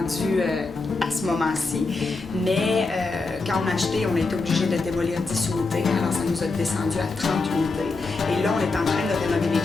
à ce moment-ci, mais quand on a acheté, on a été obligé de démolir 10 unités, alors ça nous a descendu à 30 unités. Et là, on est en train de rénover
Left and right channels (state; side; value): quieter; right; 3.8 dB